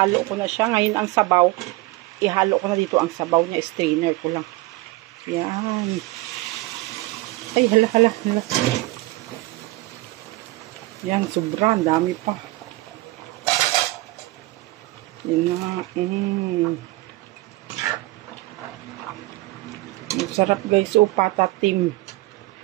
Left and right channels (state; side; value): quieter; left; 19.8 dB